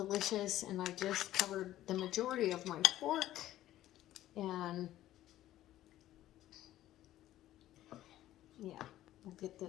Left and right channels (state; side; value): quieter; right; 13.9 dB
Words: and I just covered the majority of my fork, and yeah, we'll get